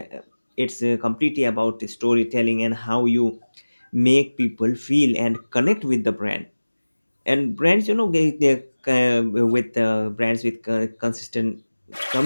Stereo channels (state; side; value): inverted; both; correlation -1.00